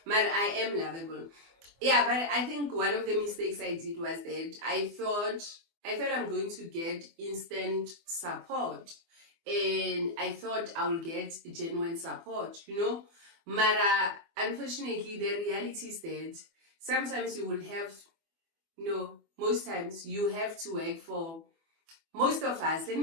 But I am lovable. Yeah, but I think one of the mistakes I did was that I thought I'm going to get instant support, and I thought I will get genuine support, But unfortunately, the reality is that sometimes you will have, most times you have to work for, most of us, let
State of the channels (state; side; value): late; left; 24 ms